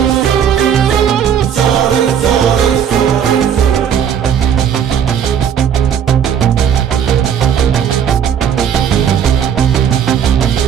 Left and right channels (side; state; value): left; quieter; 8.5 dB